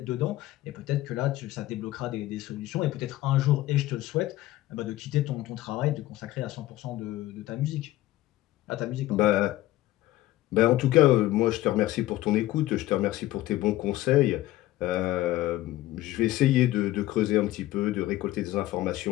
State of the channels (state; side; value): quieter; right; 15.9 dB